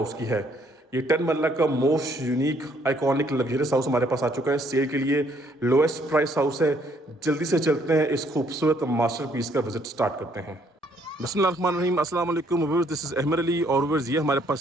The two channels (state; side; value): normal; both; correlation 0.66